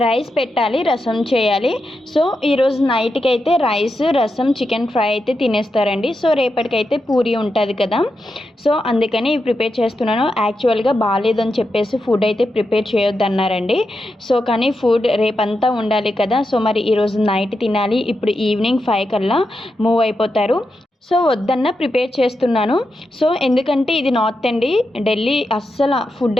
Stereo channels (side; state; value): both; normal; correlation 0.87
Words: రైస్ పెట్టాలి, రసం చేయాలి. సో ఈరోజు నైట్కి అయితే రైస్, రసం, చికెన్ ఫ్రై అయితే తినేస్తారండి. సో రేపటికైతే పూరి ఉంటుంది కదా, సో అందుకని ప్రిపేర్ చేస్తున్నాను. యాక్చువల్గా బాగాలేదని చెప్పేసి ఫుడ్ అయితే ప్రిపేర్ చేయొద్దన్నారండి. సో కానీ ఫుడ్ రేపంతా ఉండాలి కదా, సో మరి ఈరోజు నైట్ తినాలి. ఇప్పుడు ఈవినింగ్ 5 కల్లా మూవ్ అయిపోతారు. సో వద్దన్న ప్రిపేర్ చేస్తున్నాను. సో ఎందుకంటే ఇది నార్త్ అండి, ఢిల్లీ అస్సలు ఫుడ్